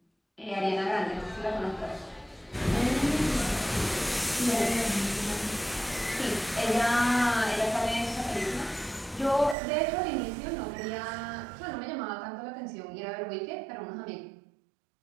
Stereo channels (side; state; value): left; drops out; at 9.6 s